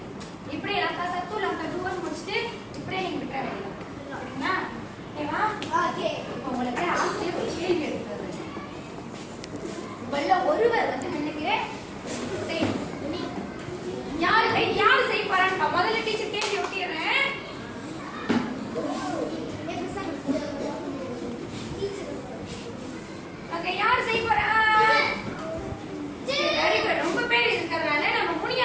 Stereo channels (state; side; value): identical; both; correlation 1.00